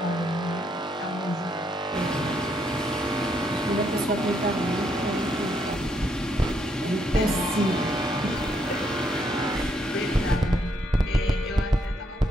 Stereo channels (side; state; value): both; normal; correlation 0.74